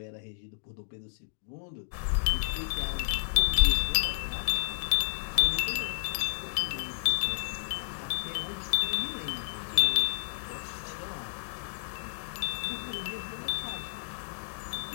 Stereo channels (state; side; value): silent; right; digital silence